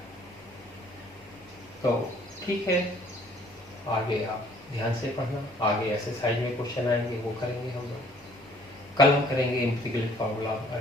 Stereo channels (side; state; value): both; normal; correlation 0.58